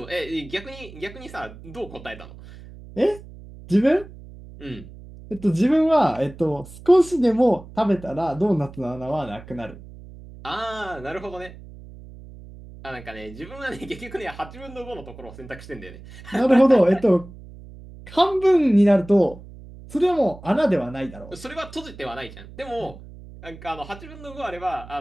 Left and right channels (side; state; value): right; noise; hum, 17 dB below the sound